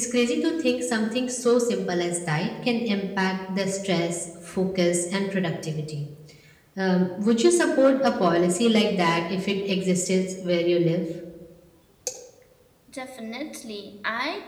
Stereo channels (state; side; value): identical; both; correlation 1.00